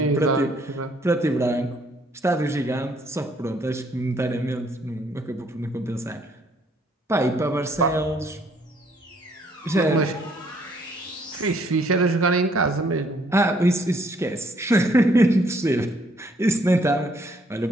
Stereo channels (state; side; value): normal; both; correlation 0.66